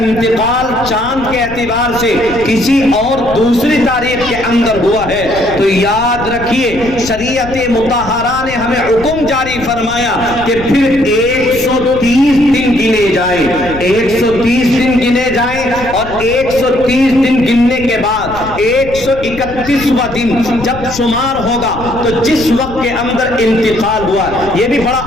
چاند کے اعتبار سے کسی اور دوسری تاریخ کے اندر ہوا ہے تو یاد رکھیے شریعت مطہرہ نے ہمیں حکم جاری فرمایا کہ پھر 130 دن گنے جائیں، 130 دن گنے جائیں اور 130 دن گننے کے بعد 131واں دن جب شمار ہوگا تو جس وقت کے اندر انتقال ہوا، یہ بھی بڑا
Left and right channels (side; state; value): left; noise; rumble, 13 dB below the sound